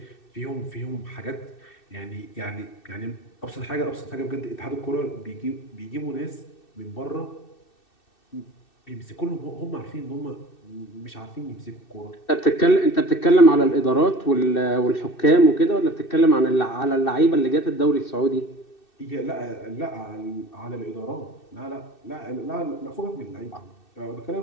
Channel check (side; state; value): right; late; 2.6 ms